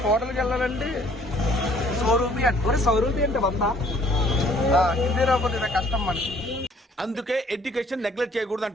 హోటల్కి వెళ్ళాలంటే 100 రూపీ అంటే 100 రూపీ అంటే 100. హిందీ రాకపోతే నాకు కష్టం మనకి. అందుకే ఎడ్యుకేషన్ నెగ్లెక్ట్ చేయకూడదు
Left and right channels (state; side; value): normal; both; correlation 0.59